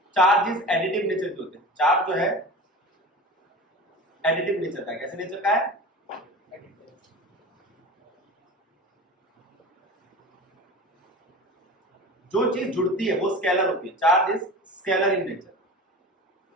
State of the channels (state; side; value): normal; both; correlation 0.33